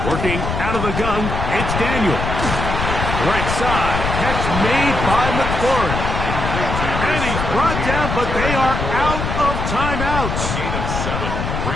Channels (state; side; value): noise; left; rumble, 3 dB below the sound